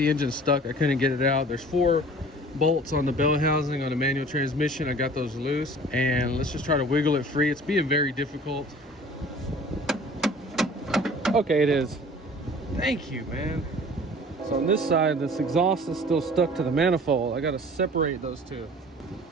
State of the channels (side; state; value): both; normal; correlation 0.46